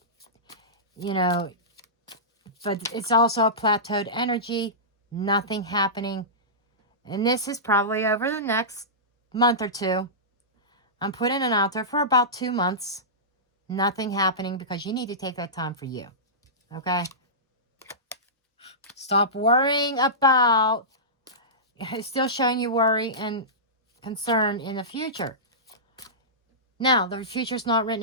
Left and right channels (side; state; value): both; normal; correlation -0.18